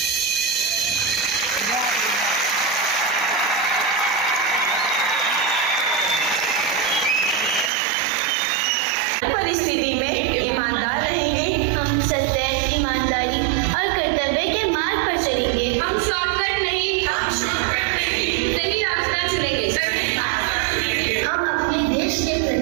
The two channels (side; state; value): left; drops out; at 7.7 s